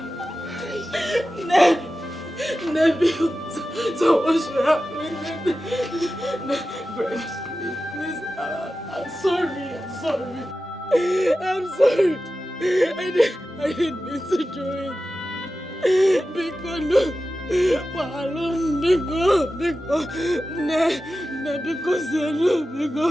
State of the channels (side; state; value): both; normal; correlation 0.93